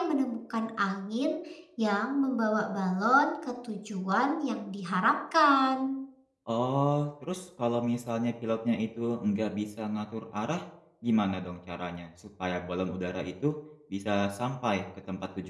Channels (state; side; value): identical; both; correlation 1.00